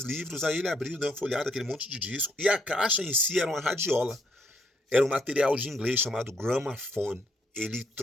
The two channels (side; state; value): both; normal; correlation 0.71